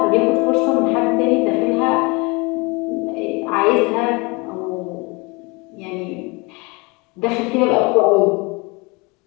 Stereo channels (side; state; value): right; quieter; 27.4 dB